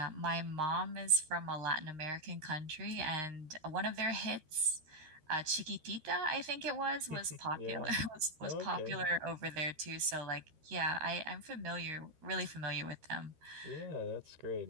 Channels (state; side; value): late; left; 13 ms